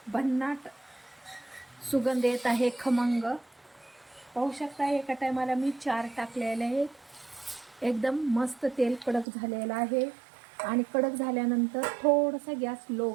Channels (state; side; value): drops out; left; at 9.2 s